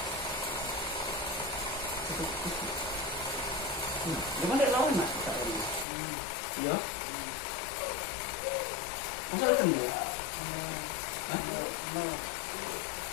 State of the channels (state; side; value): drops out; right; at 5.9 s